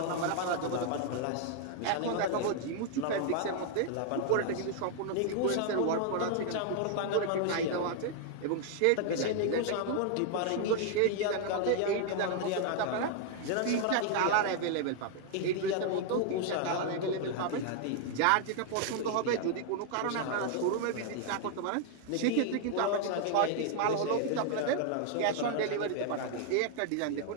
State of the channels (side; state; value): both; different; correlation 0.00